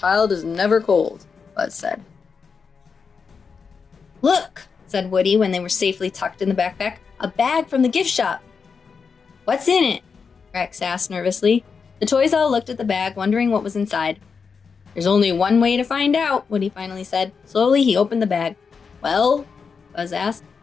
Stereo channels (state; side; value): quieter; right; 5.6 dB